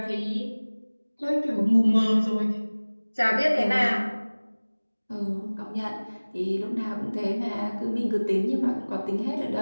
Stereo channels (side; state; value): both; inverted; correlation -1.00